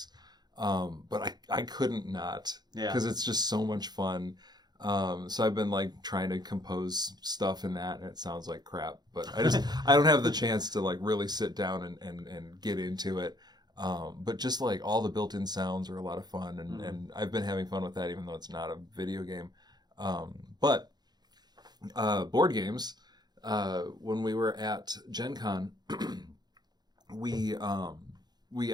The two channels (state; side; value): late; left; 0.20 ms